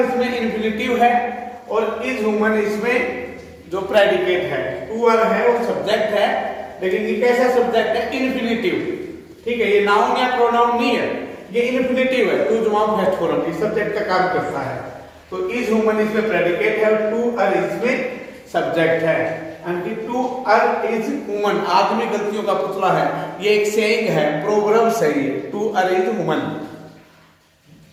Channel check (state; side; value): identical; both; correlation 1.00